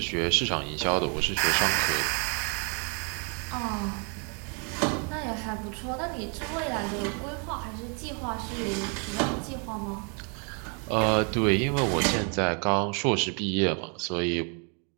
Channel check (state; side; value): quieter; left; 37.8 dB